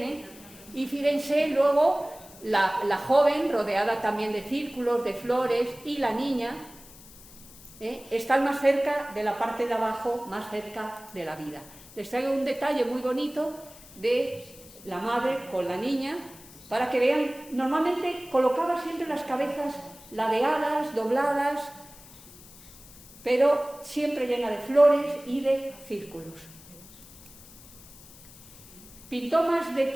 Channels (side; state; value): left; noise; hiss, 20 dB below the sound